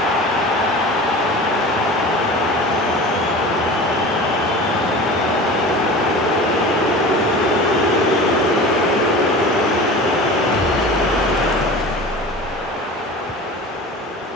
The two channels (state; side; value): normal; both; correlation 0.35